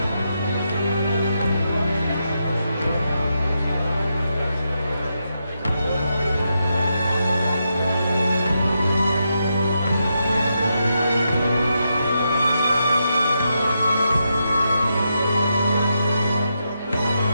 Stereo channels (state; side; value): inverted; both; correlation -0.84